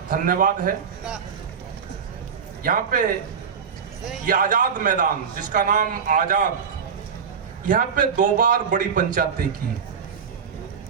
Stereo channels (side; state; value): left; quieter; 6.6 dB